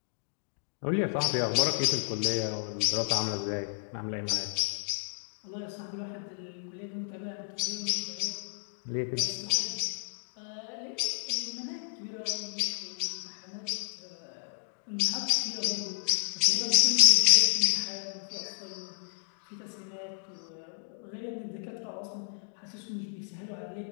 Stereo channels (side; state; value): right; silent; digital silence